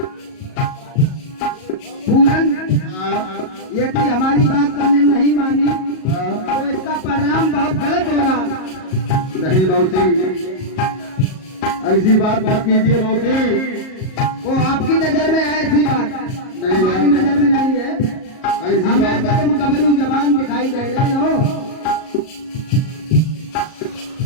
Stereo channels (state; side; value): late; right; 38 ms